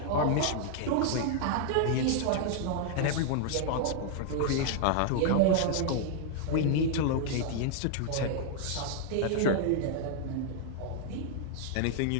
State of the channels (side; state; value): both; different; correlation -0.01